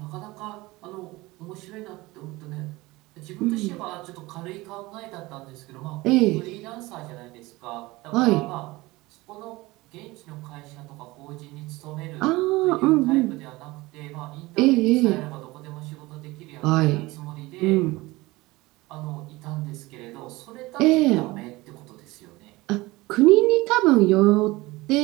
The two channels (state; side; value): quieter; left; 20.9 dB